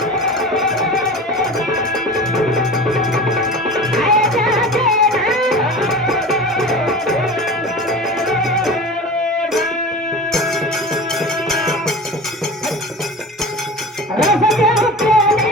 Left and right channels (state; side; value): normal; both; correlation 0.33